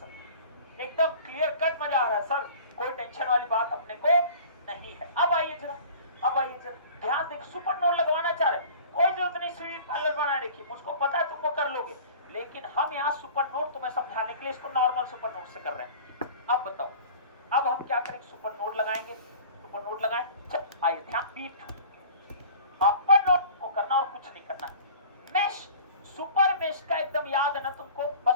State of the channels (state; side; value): inverted; both; correlation -0.43